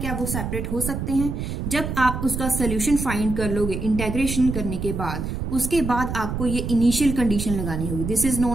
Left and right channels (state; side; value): noise; right; rumble, 4 dB below the sound